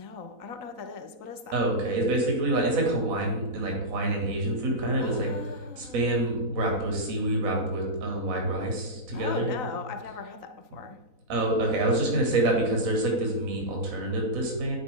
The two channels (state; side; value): late; left; 4.0 ms